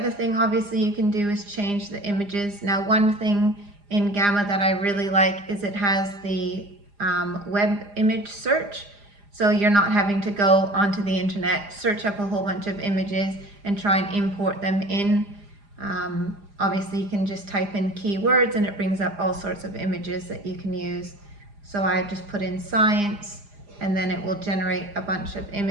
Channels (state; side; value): late; left; 4.9 ms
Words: thing obviously you can do is change the images. Now one thing in Gamma that I really like is it has the web image search. So you're not having to go onto the internet, search up a whole bunch of images and try and import them in. Obviously you can just type in keywords and it brings up all sorts of images that you can use. So I just put in science and then it will generate a bunch of